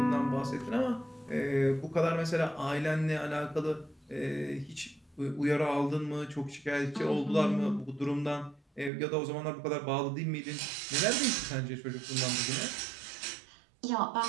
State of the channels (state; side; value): drops out; left; at 8.9 s